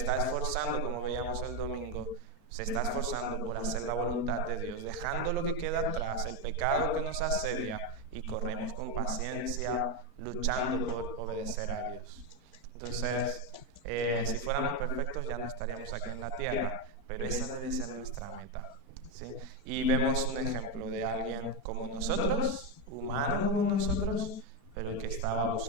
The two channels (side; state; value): left; late; 4.4 ms